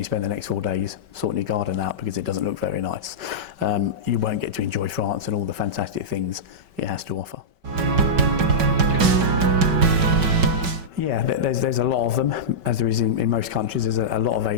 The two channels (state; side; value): late; left; 5.2 ms